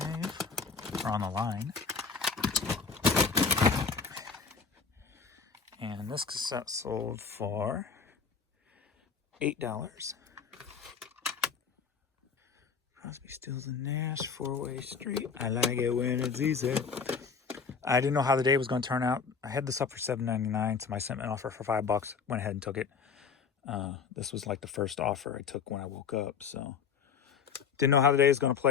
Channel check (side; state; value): right; quieter; 5.7 dB